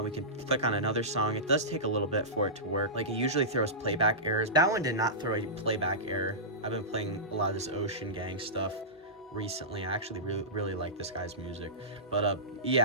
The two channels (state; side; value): normal; both; correlation -0.18